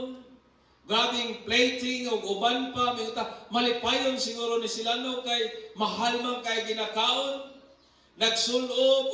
grabing plating o uban pa, malipayon siguro ni sila no kay mahal man kay ginakaon. Nagsulob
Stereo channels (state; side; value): identical; both; correlation 1.00